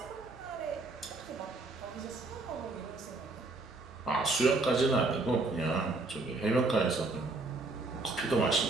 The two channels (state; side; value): quieter; left; 3.3 dB